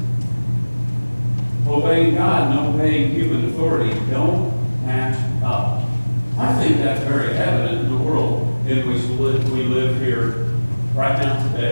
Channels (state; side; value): inverted; both; correlation -1.00